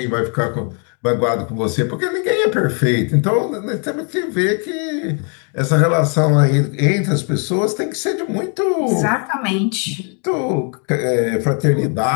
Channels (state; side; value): quieter; right; 39.3 dB